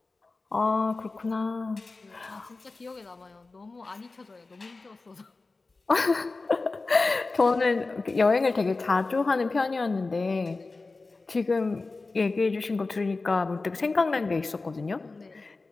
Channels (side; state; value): right; quieter; 3.6 dB